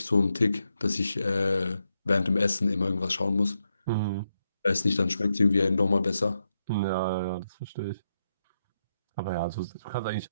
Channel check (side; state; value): both; inverted; correlation -0.84